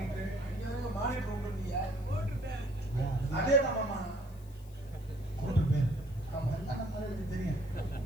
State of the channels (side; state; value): left; noise; hiss, 26 dB below the sound